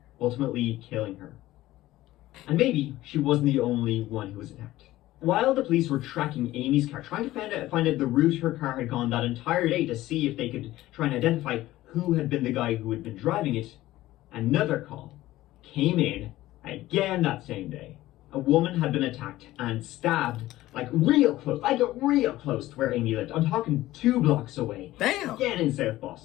ultimately killing her. And maybe she wasn't the only one who was attacked. While the police were tracking Amy's car, trying to find out the route her car had gone that entire day to see if they could try and identify who had been the guy who had been driving it, another call came in again that same day. A woman had been attacked and stabbed real close to where Amy lived. I'm talking 2 blocks away. Damn. Again in South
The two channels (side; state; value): right; quieter; 16.1 dB